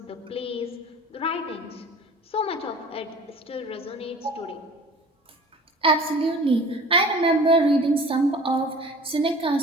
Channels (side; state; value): both; normal; correlation 0.44